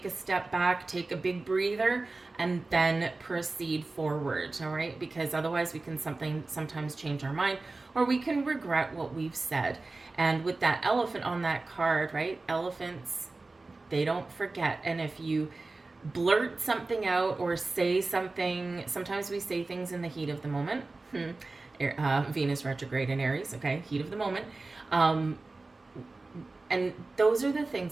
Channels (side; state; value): left; quieter; 3.4 dB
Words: a step back, take a big breather, and then proceed forward. All right, because otherwise we can sometimes change our mind, or we can regret what we've said. And with that elephant on that card, right? Elephants, they don't forget. And if you blurt something out or say something, sometimes we say things in the heat of the moment. Venus retrograde in Aries, okay, heat of the moment. And those are the